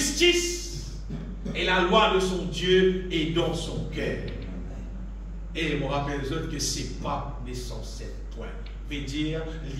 Et la loi de son Dieu est dans son cœur. Et je me rappelle les autres que c'est pas censé point. Veut dire, il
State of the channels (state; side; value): identical; both; correlation 1.00